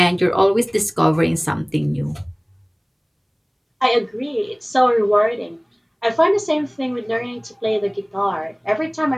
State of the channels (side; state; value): both; identical; correlation 1.00